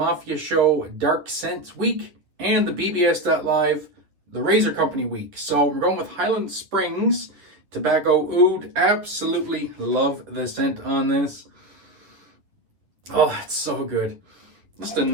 Show Dark Scents Week and the BBS.Live, the Razor Company Week. So we're going with Highland Springs Tobacco Oud. Absolutely love the scent on this. Oh, it's so good. Just a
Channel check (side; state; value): left; late; 10 ms